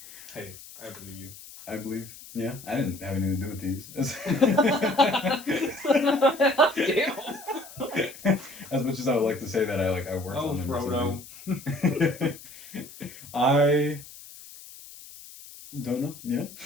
hey, I believe you. I believe. Yeah, I didn't have anything to do with these. As much as I would like to say that I worked on them. Oh, Frodo. I don't know. Yeah.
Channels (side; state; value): left; noise; hiss, 17 dB below the sound